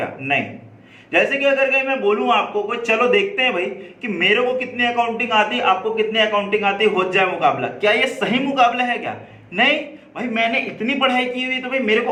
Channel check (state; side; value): identical; both; correlation 1.00